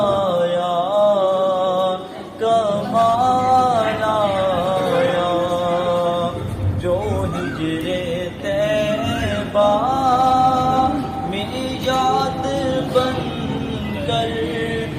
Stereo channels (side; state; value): both; identical; correlation 1.00